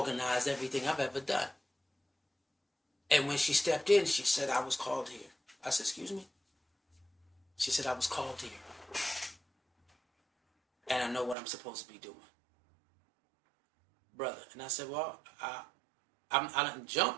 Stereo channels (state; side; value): drops out; left; at 11.4 s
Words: everything I've ever done. And when she stepped in, she said, I was called here. I said, excuse me? She said, I was called here. And I know what I'm supposed to be doing. Brother. And I said, well, I didn't